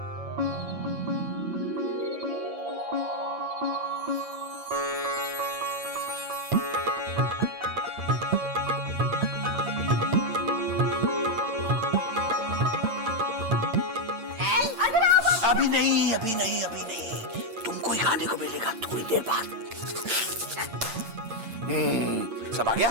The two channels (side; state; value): left; late; 8.8 ms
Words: अभी नहीं, तुमको ही खाने को मिलेगा थोड़ी देर बाद। सब आ